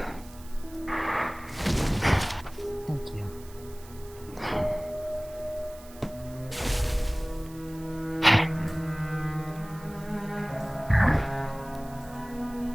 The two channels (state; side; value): noise; right; hiss, 21 dB below the sound